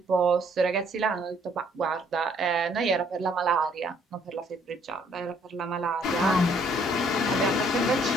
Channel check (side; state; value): both; normal; correlation 0.64